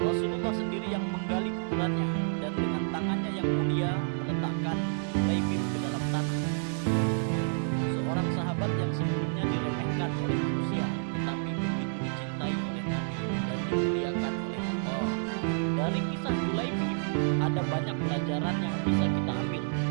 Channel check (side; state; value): left; silent; digital silence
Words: sendiri yang menggali kuburannya dan dengan tangannya yang mulia meletakkan Julaibib ke dalam tanah. Seorang sahabat yang sebelumnya diremehkan oleh manusia, tetapi begitu dicintai oleh Nabi dan dimuliakan oleh Allah. Dari kisah Julaibib ada banyak pelajaran yang bisa kita ambil.